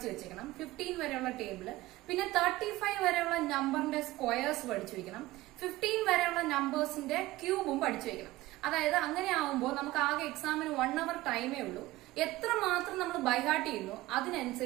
വെച്ചേക്കണം. 15 വരെയുള്ള ടേബിള്, പിന്നെ 35 വരെയുള്ള നമ്പറിന്റെ സ്ക്വയേഴ്സ് പഠിച്ചു വെക്കണം. 15 വരെയുള്ള നമ്പേഴ്സിന്റെ ക്യൂബും പഠിച്ചു വെക്കണം. അതായത് അങ്ങനെ ആവുമ്പോൾ നമുക്ക് ആകെ എക്സാമിന് 1 hour ടൈമേ ഉള്ളൂ. എത്രമാത്രം നമ്മൾ ബൈഹാർട്ട് ചെയ്യുന്നു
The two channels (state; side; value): quieter; left; 17.9 dB